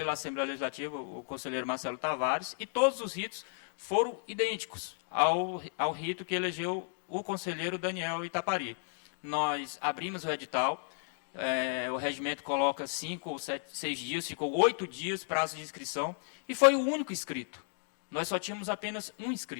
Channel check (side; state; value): right; silent; 55 dB below the other